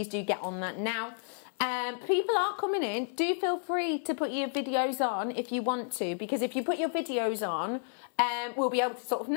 do get on that now. People are coming in. Do feel free to put your videos on if you want to, because if you put your videos on, we'll be able to sort of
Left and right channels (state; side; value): silent; right; 57 dB below the other